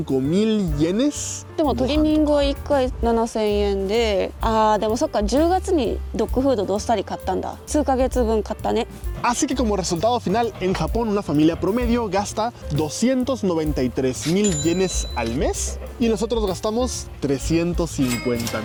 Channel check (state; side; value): identical; both; correlation 1.00